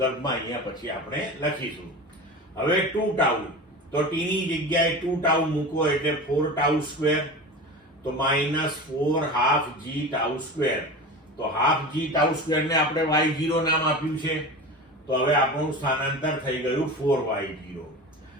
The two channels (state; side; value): normal; both; correlation 0.30